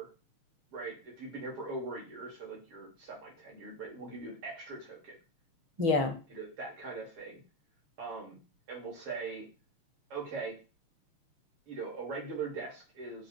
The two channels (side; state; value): left; late; 6.3 ms